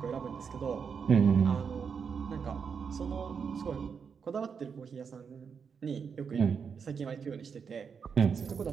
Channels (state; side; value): quieter; left; 6.3 dB